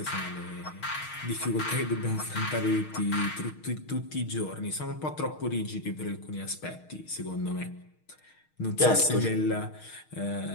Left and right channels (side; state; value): right; late; 6.4 ms